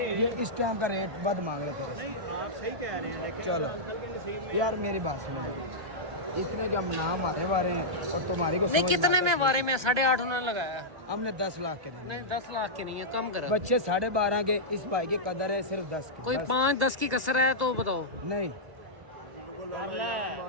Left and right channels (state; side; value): late; left; 1.3 ms